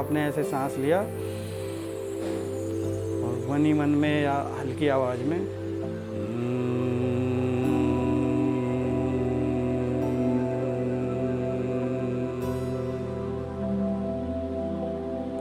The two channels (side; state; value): both; identical; correlation 1.00